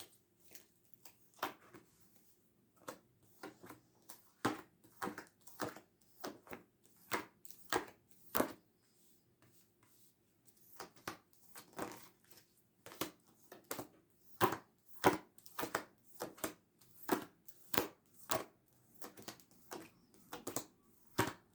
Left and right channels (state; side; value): identical; both; correlation 1.00